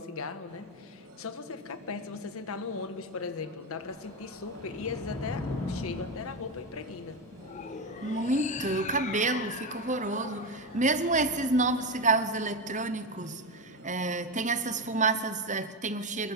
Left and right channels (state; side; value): normal; both; correlation 0.13